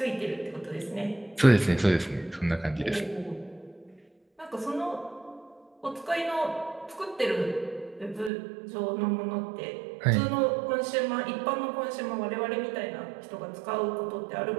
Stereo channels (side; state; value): left; drops out; at 8.3 s